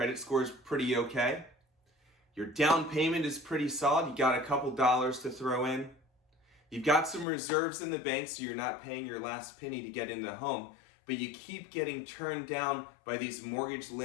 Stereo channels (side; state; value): right; drops out; at 7.2 s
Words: score is pretty okay? Your down payment is pretty solid. You got a couple dollars to throw in. You've got some reserves in the bank so you're not paying your last penny to get in the home, but you keep getting turned down by these mortgage